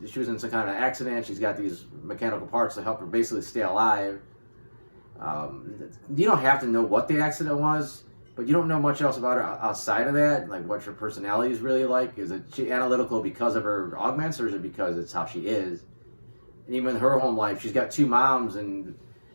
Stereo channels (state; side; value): inverted; both; correlation -1.00